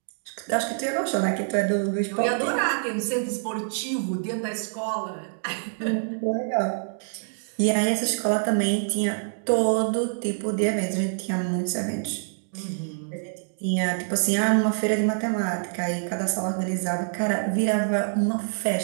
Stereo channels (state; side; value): silent; left; digital silence